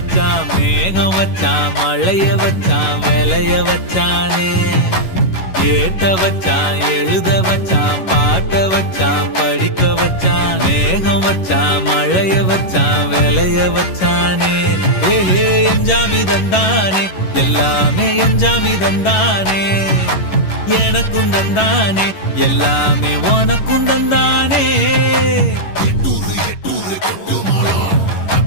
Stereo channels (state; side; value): late; right; 11 ms